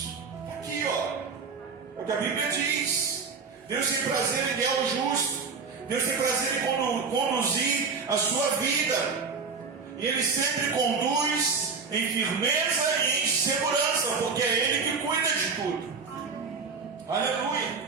Aqui, ó, é o que a Bíblia diz. Deus tem prazer em guiar o justo. Deus tem prazer em conduzir a sua vida. E Ele sempre conduz em firmeza e em segurança, porque é Ele que cuida de tudo. Aleluia.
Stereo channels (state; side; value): quieter; left; 5.1 dB